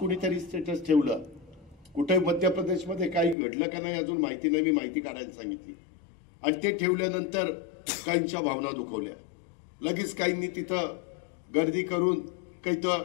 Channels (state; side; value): drops out; right; at 3.4 s